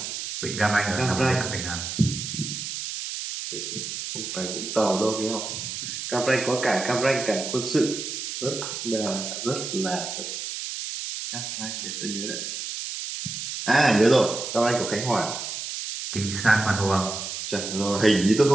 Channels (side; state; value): right; noise; hiss, 6 dB below the sound